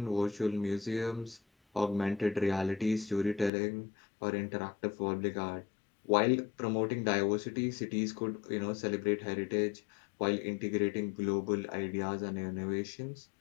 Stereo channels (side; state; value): right; drops out; at 3.5 s